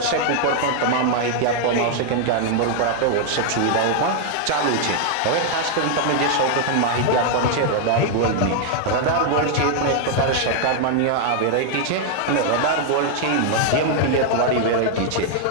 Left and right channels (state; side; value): different; both; correlation 0.00